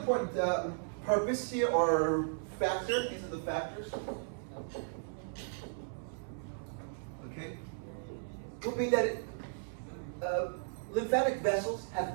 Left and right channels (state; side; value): silent; left; 54 dB below the other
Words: purpose here, or factor, these are the factors, okay, would be that lymphatic vessels